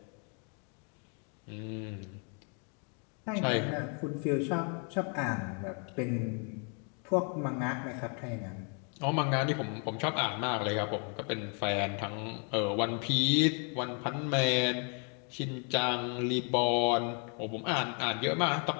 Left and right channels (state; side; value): quieter; right; 39.1 dB